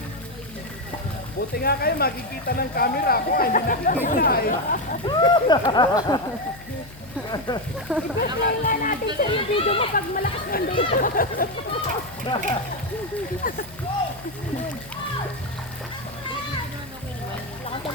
Buti nga kayo, makikita ng camera. Ako hindi nakikita eh. I-play nga natin sir yung video mo pag malakas ng data.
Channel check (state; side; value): noise; left; hum, 20 dB below the sound